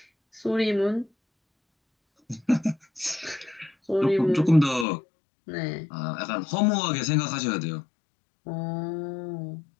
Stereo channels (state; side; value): drops out; right; at 4.9 s